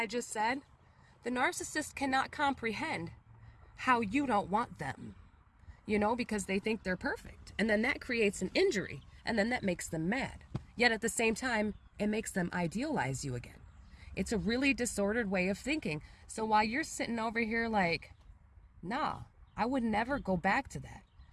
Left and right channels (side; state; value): both; identical; correlation 1.00